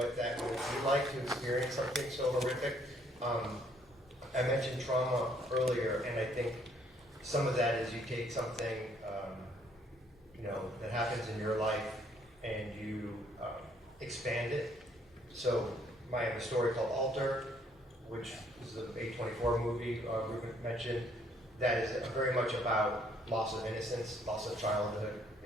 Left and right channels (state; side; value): normal; both; correlation 0.65